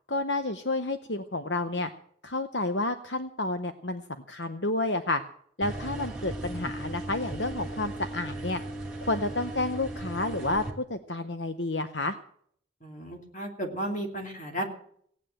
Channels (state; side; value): normal; both; correlation -0.09